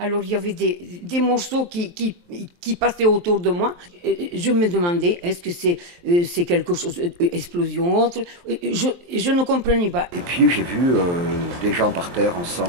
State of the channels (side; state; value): left; late; 23 ms